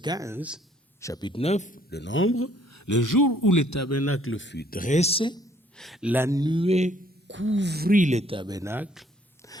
chapitre 9 de Nombre, le jour où le tabernacle fut dressé, la nuée couvrit le tabernacle,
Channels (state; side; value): normal; both; correlation 0.62